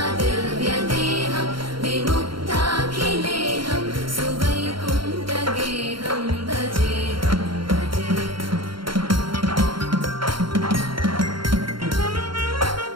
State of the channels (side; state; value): left; late; 0.73 ms